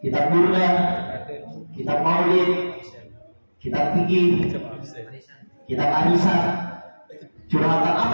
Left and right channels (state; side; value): inverted; both; correlation -1.00